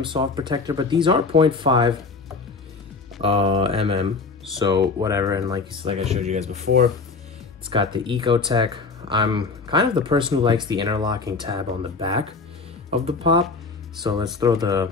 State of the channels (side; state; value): right; quieter; 4.3 dB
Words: soft protector. But these are 0.5 mm, so whatever. And like I showed you guys before, it's got the EcoTek. I'm kind of the person who likes the interlocking tab on the back of the pop, so let's throw the